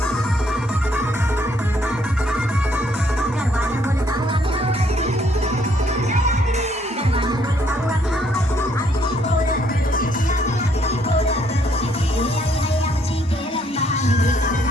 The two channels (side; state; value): both; normal; correlation 0.68